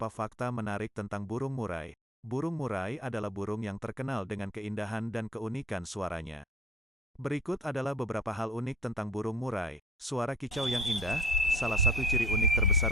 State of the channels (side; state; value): both; normal; correlation 0.47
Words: fakta menarik tentang burung murai. Burung murai adalah burung yang terkenal dengan keindahan dan keunikan suaranya. Berikut adalah beberapa hal unik tentang burung murai. Suara kicau yang indah. Salah satu ciri unik